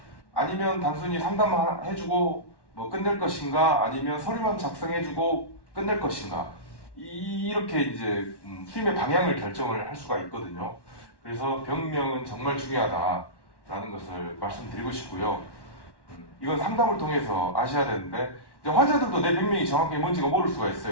아니면 단순히 상담해주고 뭐 끝낼 것인가 아니면 서류만 작성해주고 끝낼 것인가 이렇게 이제 수임의 방향을 결정을 할 수가 있거든요. 그래서 병명은 정말 중요하다라는 것을 말씀드리고 싶고요. 이건 상담을 통해서 아셔야 되는데 이제 환자들도 내 병명이 정확히 뭔지가 모를 수가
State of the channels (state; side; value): late; right; 1.1 ms